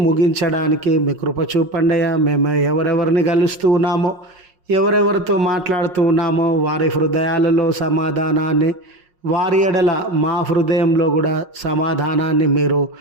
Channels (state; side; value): late; left; 5.5 ms